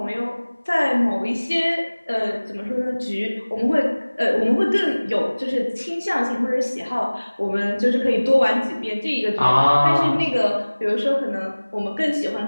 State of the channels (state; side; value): inverted; both; correlation -1.00